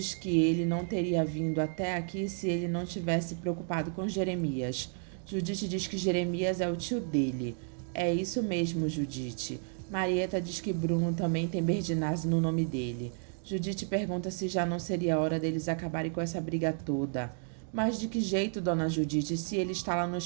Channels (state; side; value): silent; left; 56 dB below the other